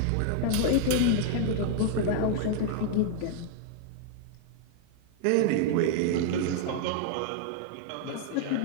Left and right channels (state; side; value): different; both; correlation -0.01